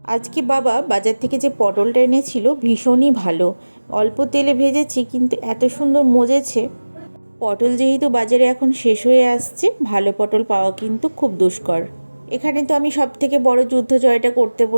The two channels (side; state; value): both; inverted; correlation -1.00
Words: আজকে বাবা বাজার থেকে যে পটলটা এনেছিল ভীষণই ভালো। অল্প তেলে ভেজেছি, কিন্তু এত সুন্দর মজেছে। পটল যেহেতু বাজারে এখন শেষ হয়ে আসছে, ভালো পটল পাওয়া কিন্তু খুব দুষ্কর। এখানে তো আমি সব থেকে বড় যুদ্ধ জয়টা করতে